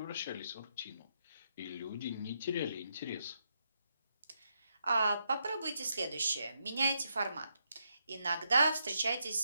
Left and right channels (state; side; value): inverted; both; correlation -0.81